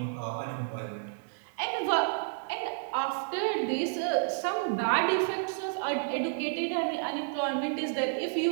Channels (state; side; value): silent; left; digital silence